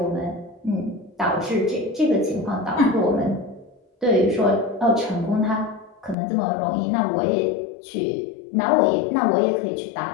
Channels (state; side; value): drops out; right; at 6.2 s